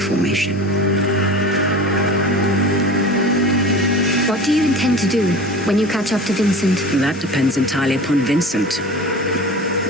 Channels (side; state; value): both; normal; correlation 0.35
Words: What do you intend to do when you catch up to Vincent? That depends entirely upon Vincent.